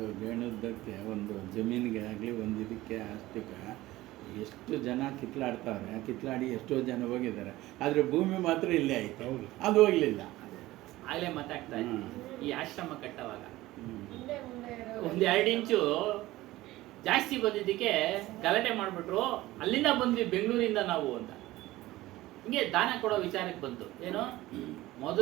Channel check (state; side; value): quieter; left; 17.4 dB